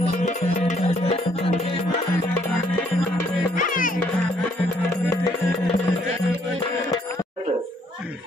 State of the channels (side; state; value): both; normal; correlation 0.67